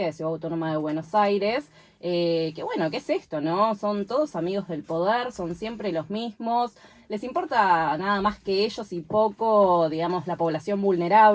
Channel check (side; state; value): both; identical; correlation 1.00